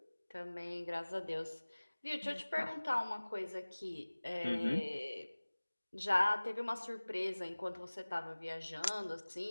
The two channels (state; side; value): inverted; both; correlation -1.00